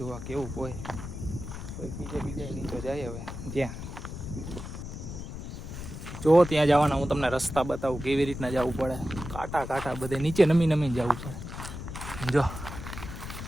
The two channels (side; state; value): left; noise; rumble, 9 dB below the sound